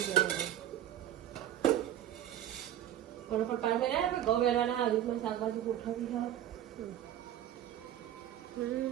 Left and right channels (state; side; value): quieter; left; 11.6 dB